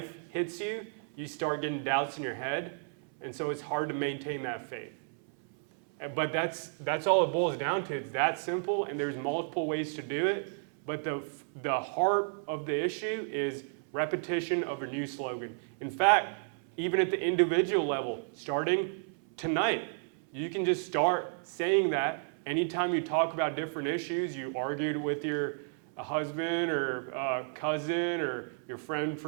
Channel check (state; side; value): silent; left; 56 dB below the other